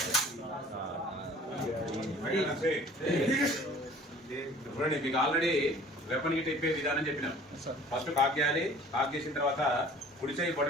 చూడండి మీకు already weapon Git ఇప్పే విధానం చెప్పినాం. ఫస్ట్ కాక్ చేయాలి. కాక్ చేసిన తర్వాత కుడి చేయి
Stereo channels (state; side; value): normal; both; correlation 0.49